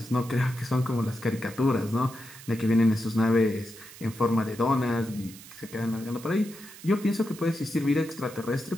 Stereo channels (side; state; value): right; noise; hiss, 17 dB below the sound